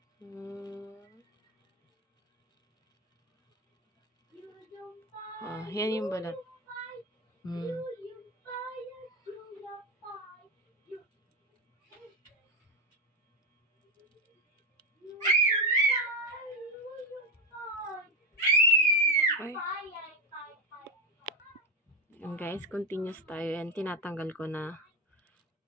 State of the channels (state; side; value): normal; both; correlation 0.11